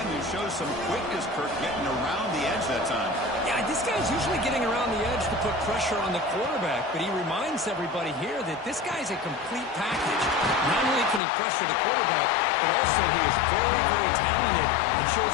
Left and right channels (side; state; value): right; drops out; at 11.2 s